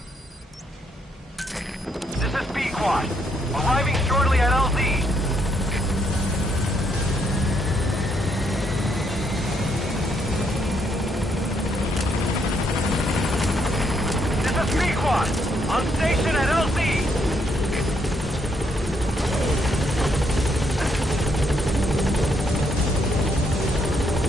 Arriving shortly at LZ. This is Pequod, on station at LZ.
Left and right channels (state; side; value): normal; both; correlation 0.74